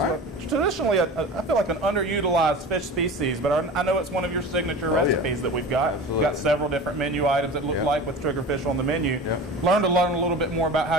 traditionally, I feel like an underutilized fish species, but I know it's one of your signature recipes that we've got. We've got several different menu items that look like with triggerfish on the menu. Learn a little bit more about how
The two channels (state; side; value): normal; both; correlation 0.34